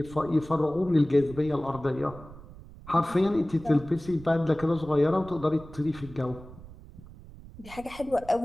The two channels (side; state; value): right; noise; rumble, 17 dB below the sound